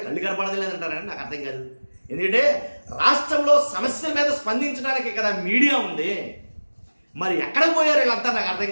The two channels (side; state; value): both; inverted; correlation -1.00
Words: కళ్ళు కనపడలేదంటారని నాకు అర్థం కాదు. ఎందుకంటే రాష్ట్రంలో సమస్యల మీద స్పందించడానికి కదా మీడియా ఉంది. మరి ఎక్కడ పోయారు వీళ్ళంతా నాకు అర్థం